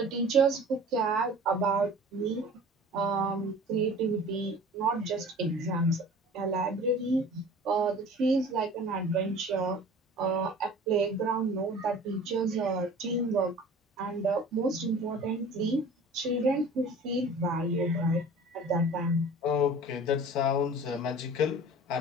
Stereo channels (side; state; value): both; normal; correlation 0.43